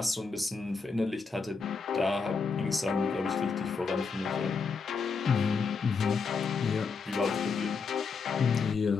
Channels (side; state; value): right; quieter; 4.9 dB